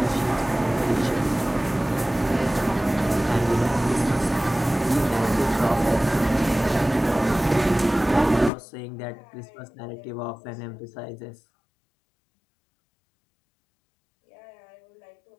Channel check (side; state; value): right; drops out; at 8.5 s